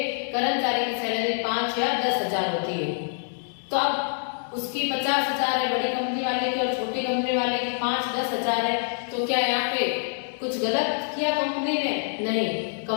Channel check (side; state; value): right; silent; digital silence